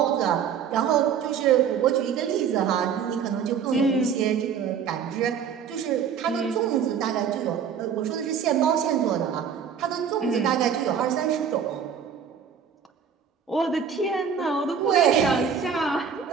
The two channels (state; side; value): quieter; left; 7.3 dB